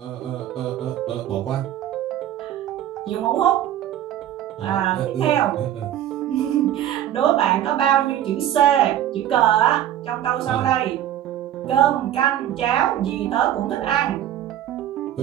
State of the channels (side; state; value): left; quieter; 11.7 dB